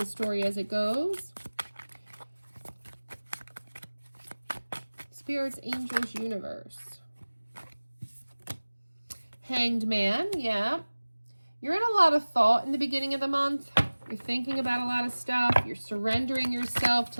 story as it goes. Spirits, angels, universe. Hanged Man, yeah. You're in a lot of thought in the beginning of the month. You're thinking about a lot of stuff. You're surrendering yourself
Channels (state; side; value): inverted; both; correlation -1.00